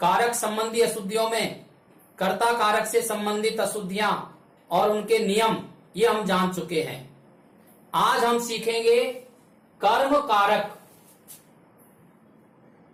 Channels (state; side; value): identical; both; correlation 1.00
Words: संबंधी अशुद्धियों में कर्ता कारक से संबंधित अशुद्धियां और उनके नियम ये हम जान चुके हैं। आज हम सीखेंगे कर्म कारक।